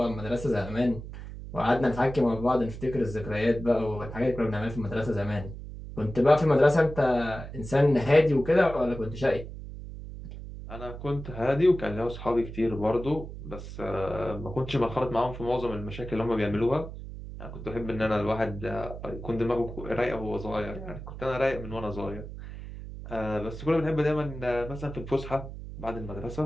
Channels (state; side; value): noise; right; hum, 11 dB below the sound